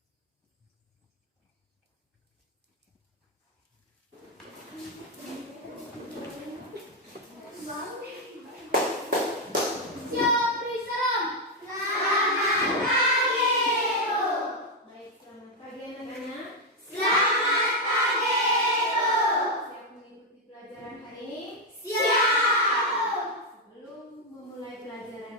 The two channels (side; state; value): both; normal; correlation 0.03